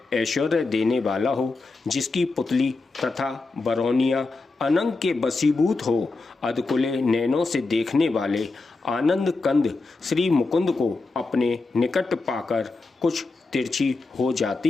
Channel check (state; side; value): quieter; right; 3.6 dB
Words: ऐश्वर्य देने वाला हो, जिसकी पुतली तथा बरौनिया अनंग के बसीभूत हो। अधकुले नैनों से देखने वाले आनंद कंद श्री मुकुंद को अपने निकट पाकर कुछ तिरछी हो